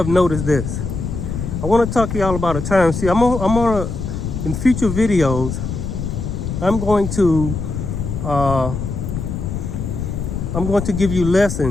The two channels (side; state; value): left; noise; rumble, 4 dB below the sound